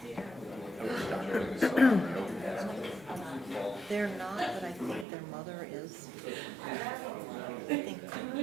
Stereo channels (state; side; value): drops out; left; at 5.1 s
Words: They're not, but I think their mother is. I think.